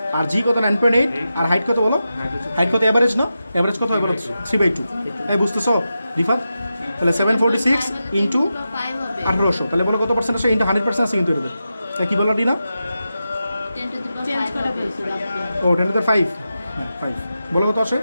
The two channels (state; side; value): inverted; both; correlation -0.90